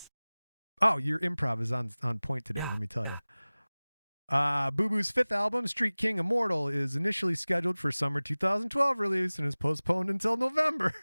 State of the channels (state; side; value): inverted; both; correlation -0.99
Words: Oh, your improv is on point today, let me tell you. Boo Boo's 5th album, Street King Immortal, is initially scheduled for summer 2012 release and is postponed until November